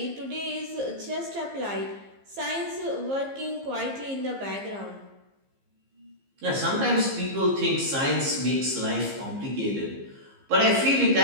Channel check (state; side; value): late; left; 15 ms